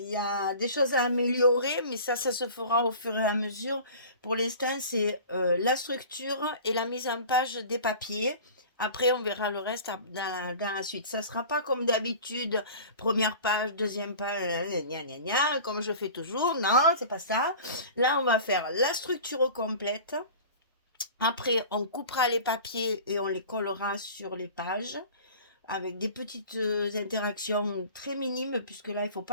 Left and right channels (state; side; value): inverted; both; correlation -0.40